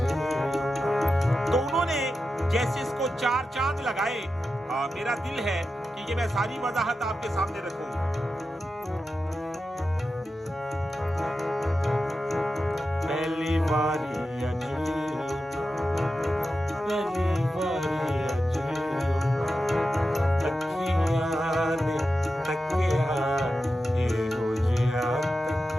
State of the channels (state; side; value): normal; both; correlation 0.91